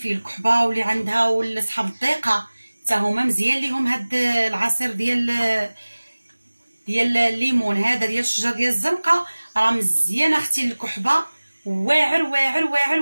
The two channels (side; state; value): both; inverted; correlation -1.00